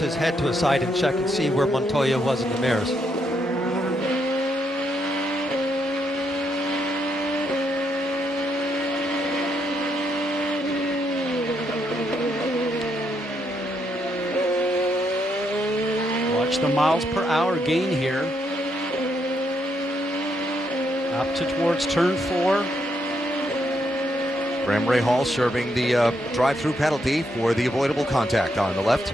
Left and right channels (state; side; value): normal; both; correlation 0.77